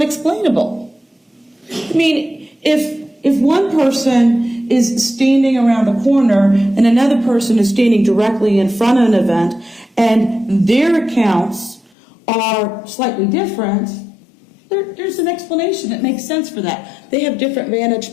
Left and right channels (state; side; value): drops out; right; at 11.9 s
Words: explainable? I mean, if one person is standing around the corner and another person is standing directly in front of an event and their accounts are slightly different, there's an explanation that makes sense for that. They have different